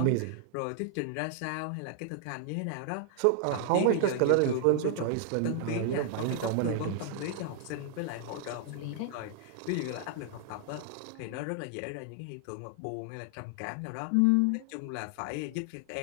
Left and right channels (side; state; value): both; different; correlation 0.00